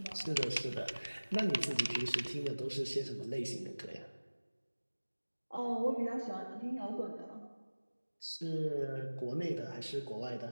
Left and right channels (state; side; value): inverted; both; correlation -1.00